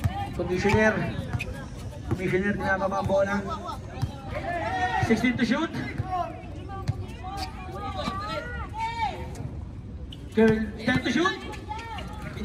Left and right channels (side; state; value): both; identical; correlation 1.00